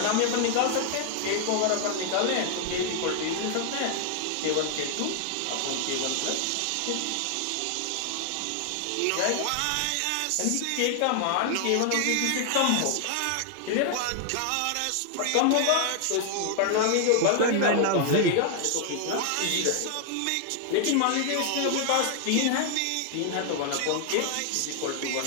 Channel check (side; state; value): both; different; correlation 0.00